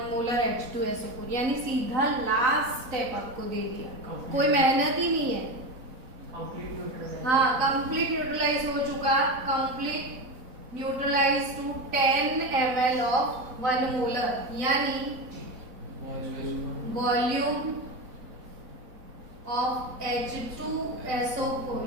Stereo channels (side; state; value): left; late; 4.0 ms